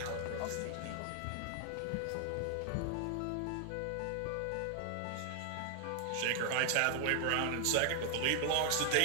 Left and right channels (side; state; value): both; different; correlation 0.00